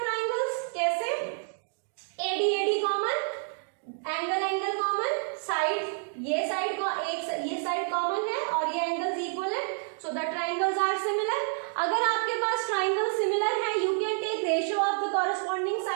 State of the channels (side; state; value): left; silent; 56 dB below the other